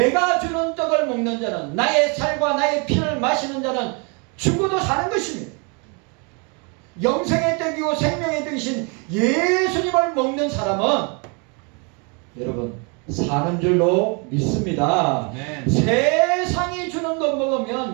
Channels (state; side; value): quieter; left; 33.6 dB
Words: 주는 떡을 먹는 자는 나의 살과 나의 피를 마시는 자는 죽어도 사는 것입니다. 영생의 떡이고 생명의 떡이신 예수님을 먹는 사람은 여러분 사는 줄로 믿습니다. 네. 세상이 주는 것